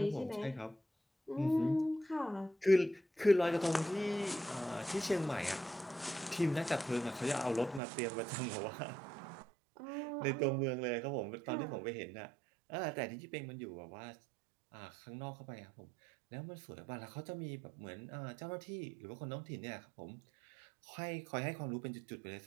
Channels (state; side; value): drops out; left; at 7.8 s